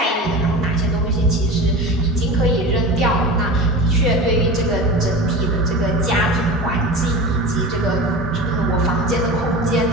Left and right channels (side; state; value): both; normal; correlation 0.31